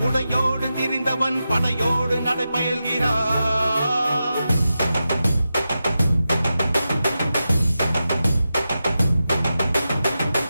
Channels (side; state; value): both; inverted; correlation -0.90